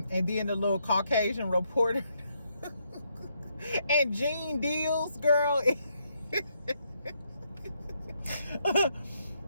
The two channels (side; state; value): both; inverted; correlation -0.76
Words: then the little Caucasian reporter. And Gene Deals, girl.